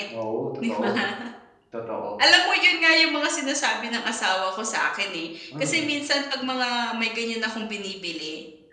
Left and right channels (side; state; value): both; identical; correlation 1.00